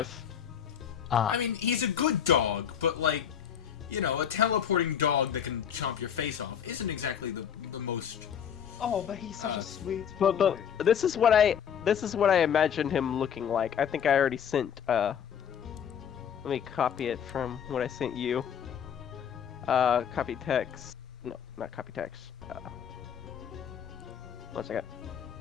Ah, I mean, he's a good dog, but like, a teleporting dog that can chomp your face off isn't exactly the most. Oh, but he's such a sweet But boy. this is what I imagined him looking like. I think I already sent. Let me copy it from what I sent you. Copy text. No, not copy text. 1 second.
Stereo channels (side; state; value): right; quieter; 8.4 dB